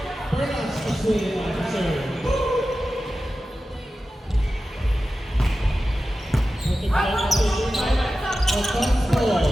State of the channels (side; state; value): both; normal; correlation 0.93